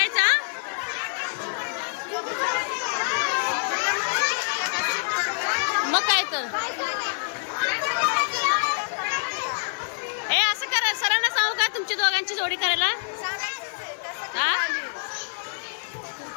मग काय तर असं करा. सरांना सांगू का तुमची दोघांची जोडी करायला?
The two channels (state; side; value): silent; right; digital silence